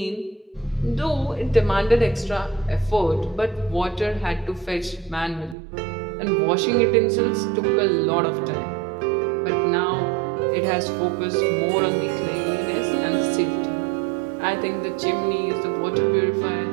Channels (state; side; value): drops out; left; at 5.6 s